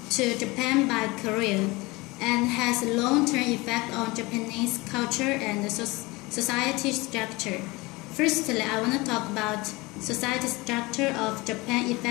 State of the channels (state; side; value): quieter; right; 23.2 dB